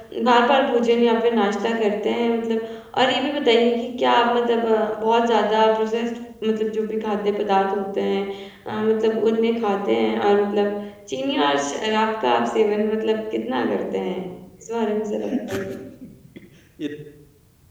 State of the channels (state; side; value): identical; both; correlation 1.00